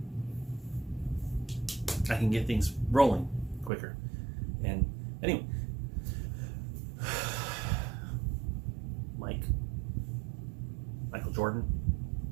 can get things rolling quicker. And anyway, Michael Jordan,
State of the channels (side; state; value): left; drops out; at 3.7 s